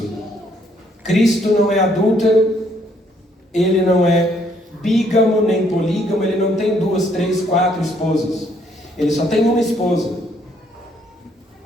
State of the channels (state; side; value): normal; both; correlation 0.68